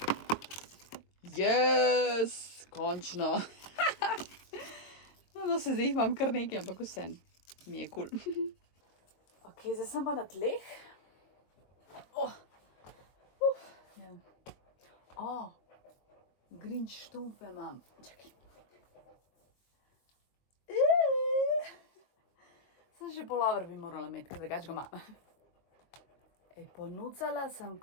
Yes, končno. No, se zdaj jih imam kar nekaj, ampak vse mi je kul. Ok, zdaj sem pa na tleh. Grinch štumfe imam. Čakaj. Sem še polover bi morala imeti, ker drugače ga imam. Ponucala sem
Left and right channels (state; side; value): late; right; 22 ms